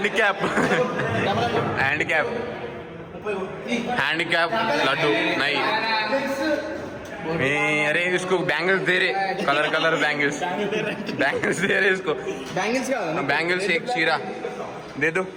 handicap handicap laddu నై. अरे इसको बैंगल्स दे रहे, कलर कलर बैंगल्स दे रहे इसको. बैंगल्स एक शीरा दे दो,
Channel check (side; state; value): both; identical; correlation 1.00